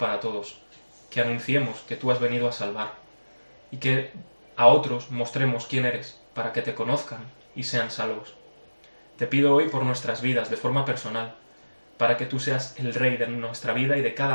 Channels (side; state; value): both; inverted; correlation -1.00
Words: todos, que anunciemos que tú has venido a salvar y que a otros mostremos quién eres para que te conozcan y sean salvos. Te pido hoy por nuestras vidas de forma personal, para que tú seas el rey de nuestra vida y de